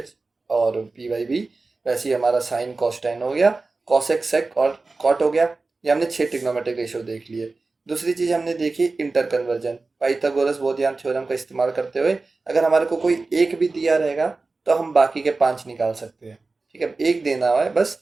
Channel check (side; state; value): left; quieter; 3.7 dB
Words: और P/B। वैसे ही हमारा साइन कॉस tan हो गया, कॉसेक सेक और कॉट हो गया। ये हमने 6 ट्रिग्नोमेट्रिक रेशियो देख लिए। दूसरी चीज़ हमने देखी inter conversion, Pythagoras Baudhayana theorem का इस्तेमाल करते हुए अगर हमारे को कोई एक भी दिया रहेगा तो हम बाकी के 5 निकाल सकते हैं, ठीक है। एक देना हुआ है बस,